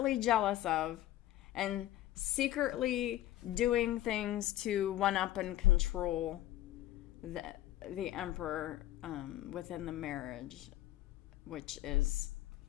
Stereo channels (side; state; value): right; quieter; 14.1 dB